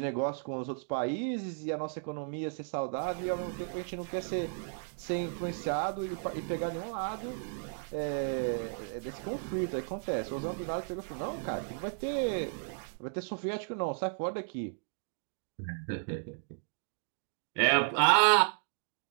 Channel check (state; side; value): silent; left; digital silence